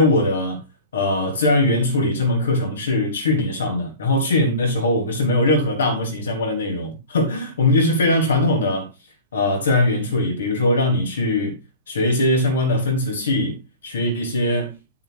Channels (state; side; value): inverted; both; correlation -0.40